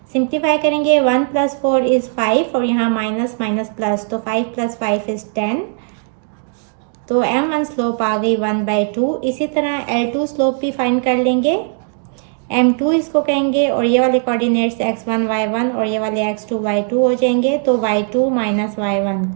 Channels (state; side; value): silent; left; 57 dB below the other